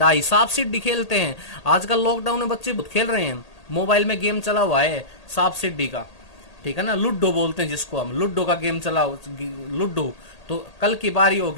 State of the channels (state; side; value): late; right; 1.8 ms